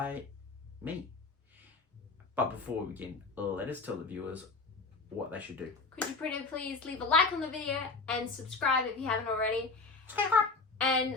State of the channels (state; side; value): quieter; right; 4.0 dB